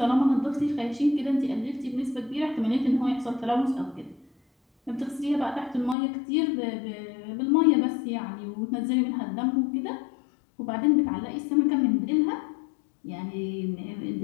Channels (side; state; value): right; drops out; at 6.0 s